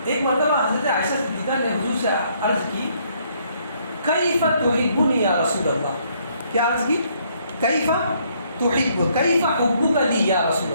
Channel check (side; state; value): both; inverted; correlation -0.68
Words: ایک مرتبہ حضرت عائشہ صدیقہ نے حضور سے عرض کی کیف تحبنی یا رسول اللہ. کیا عرض کی؟ کیف تحب, کیف حبک لی یا رسول